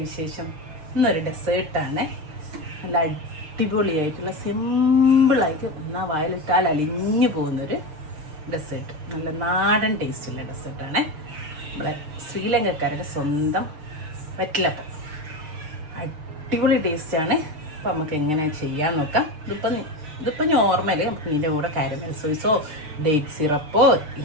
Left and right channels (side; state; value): left; late; 6.6 ms